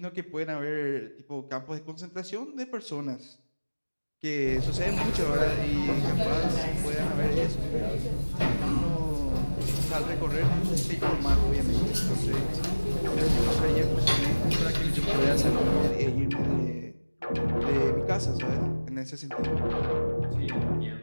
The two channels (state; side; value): inverted; both; correlation -1.00